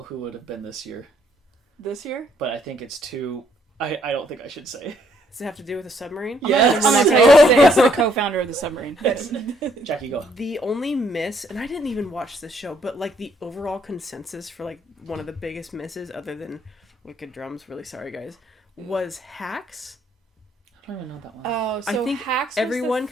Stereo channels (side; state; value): both; normal; correlation 0.68